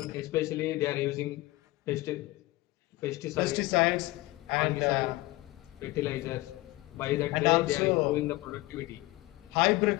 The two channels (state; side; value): quieter; right; 19.5 dB